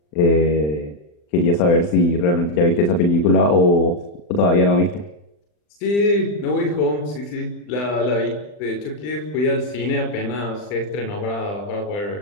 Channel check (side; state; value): right; late; 40 ms